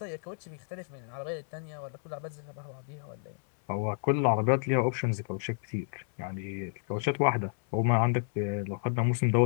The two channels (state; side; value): silent; right; 57 dB below the other